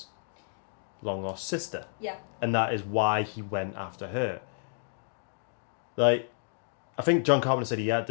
long lost sister. Yeah. And that is why he went after her. Like, I think John Carpenter said he had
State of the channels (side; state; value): right; silent; digital silence